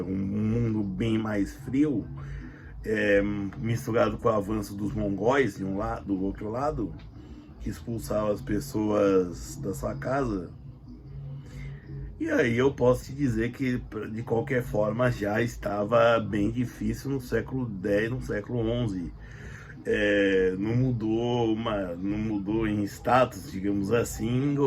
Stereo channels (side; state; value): both; identical; correlation 1.00